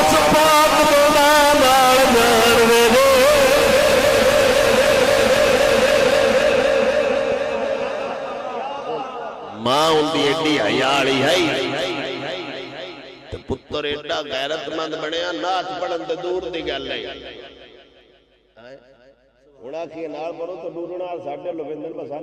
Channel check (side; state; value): both; identical; correlation 1.00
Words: پاک دے نال جان وے ماں ان دی ایڈی حیا والی ہے تے پتر پتر ایڈا غیرت مند بنیا نعت پڑھن تے دور دی گل ہے ہونا کی نال پڑھو تو ڈورنا ساڈے لویندر